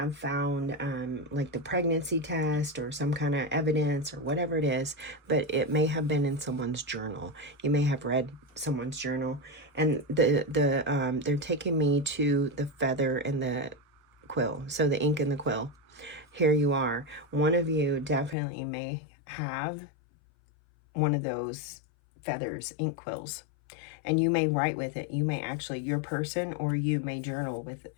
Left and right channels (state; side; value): drops out; right; at 18.4 s